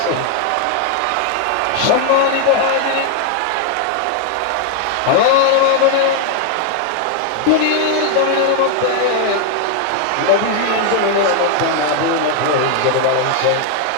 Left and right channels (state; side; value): different; both; correlation 0.00